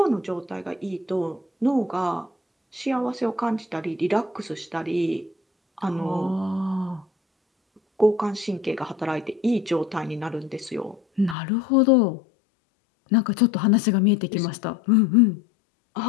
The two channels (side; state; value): right; drops out; at 11.4 s